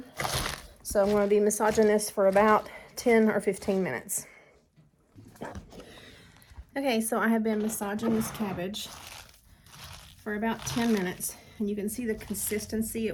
So I'm going to be massaging this for about 10 or 15 minutes. Okay, so I have been massaging this cabbage for about 10 minutes. And you can see the consistency.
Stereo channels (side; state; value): both; identical; correlation 1.00